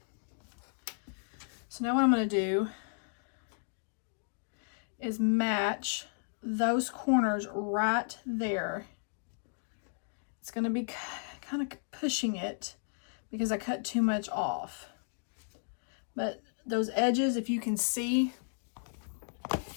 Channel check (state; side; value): silent; right; digital silence